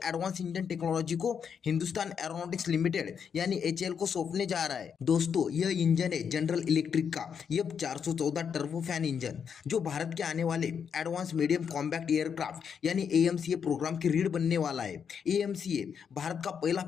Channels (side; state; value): right; quieter; 7.1 dB